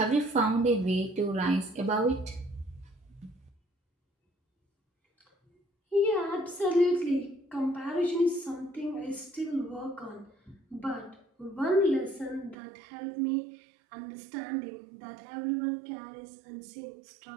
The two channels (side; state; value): left; drops out; at 12.6 s